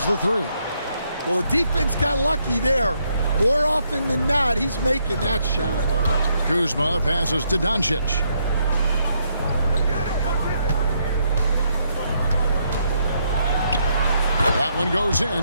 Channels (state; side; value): inverted; both; correlation -0.75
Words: the three. Well, the defense got lucky there. More often than not, he's making that shot. Kuzma passes to Doncic. That one goes